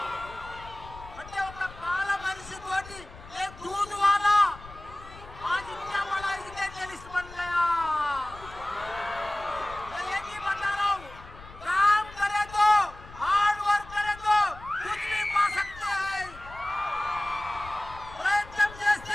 అంటే ఒక పాల మనిషి తోటి ఏ दूध वाला आज इतना बड़ा एजुकेशनिस्ट बन गया. मैं एक ही बता रहा हूँ, काम करे तो, हार्ड वर्क करे तो कुछ भी पा सकते हैं. ప్రయత్నం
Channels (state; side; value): noise; left; rumble, 18 dB below the sound